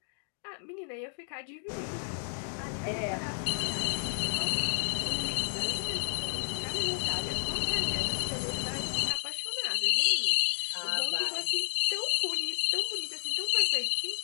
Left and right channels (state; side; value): silent; right; 57 dB below the other